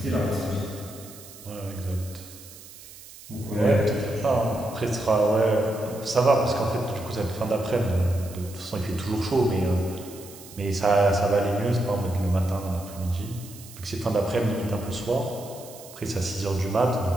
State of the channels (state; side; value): noise; right; hiss, 18 dB below the sound